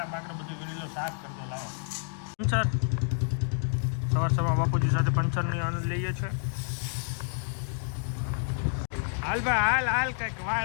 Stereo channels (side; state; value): right; silent; digital silence